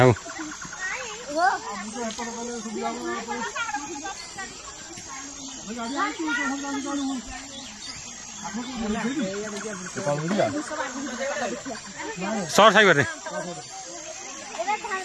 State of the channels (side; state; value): both; identical; correlation 1.00